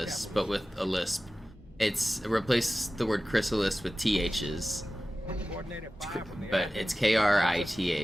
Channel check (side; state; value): both; normal; correlation 0.96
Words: but with a lisp. It's replace the word chrysalis with THs, but it's